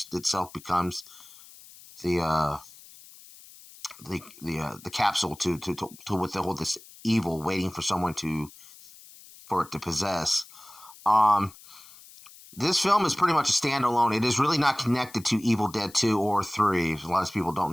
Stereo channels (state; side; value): noise; left; hiss, 21 dB below the sound